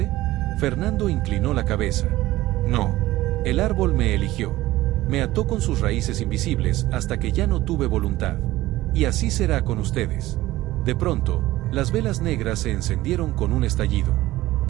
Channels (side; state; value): left; quieter; 16.8 dB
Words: Fernando inclinó la cabeza. No. El árbol me eligió. Me ató con sus raíces invisibles hasta que ya no tuve voluntad. Y así será con ustedes. De pronto, las velas negras se encendieron con un estallido.